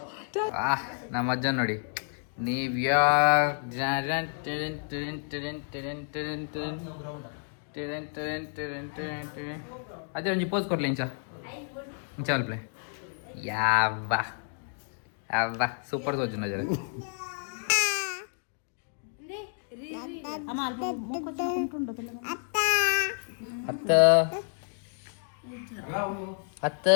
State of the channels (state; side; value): silent; right; 58 dB below the other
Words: ನಮ್ಮ ಅಜ್ಜ ನೋಡಿ. ನೀವು ಅದೇ ಒಂಜಿ ಪೋಸ್ ಕೊಡ್ಲಿ ಇಂಚ ಅಲ್ಪ್ಲೆ ಯಾವ್ವ ಅವ್ವ ಸೂಪರ್ ತೋಜು ನಜರ ಅತ್ತ ಅತ್ತ